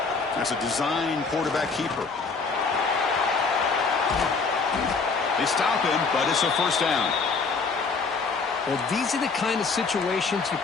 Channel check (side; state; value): right; quieter; 4.6 dB